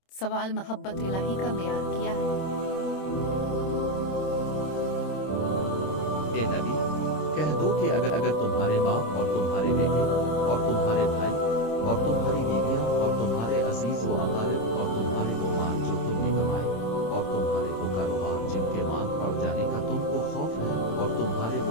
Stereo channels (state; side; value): late; right; 26 ms